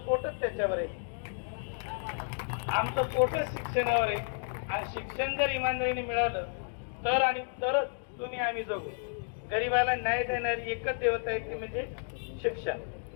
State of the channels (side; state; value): right; silent; digital silence